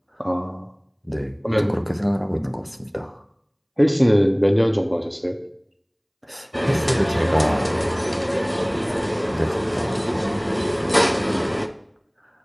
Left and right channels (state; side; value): identical; both; correlation 1.00